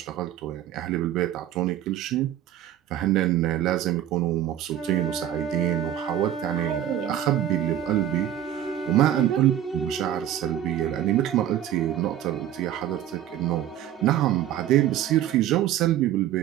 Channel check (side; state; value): left; quieter; 11.5 dB